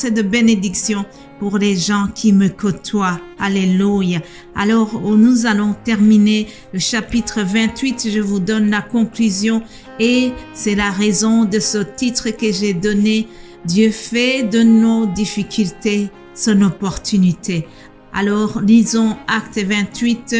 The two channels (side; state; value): both; identical; correlation 1.00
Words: de bénédiction pour les gens qui me côtoient. Alléluia. Alors, nous allons terminer le chapitre 28. Je vous donne la conclusion et c'est la raison de ce titre que j'ai donné. Dieu fait de nos difficultés son opportunité. Alors, lisons Acte 28